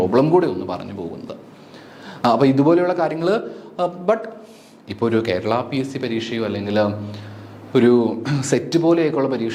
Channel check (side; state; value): both; identical; correlation 1.00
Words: കൂടി ഒന്ന് പറഞ്ഞു പോകുന്നത്. അപ്പോൾ ഇതുപോലെയുള്ള കാര്യങ്ങൾ ബട്ട് ഇപ്പോൾ ഒരു കേരള PSC പരീക്ഷയോ അല്ലെങ്കിൽ ഒരു സെറ്റ് പോലെയൊക്കെയുള്ള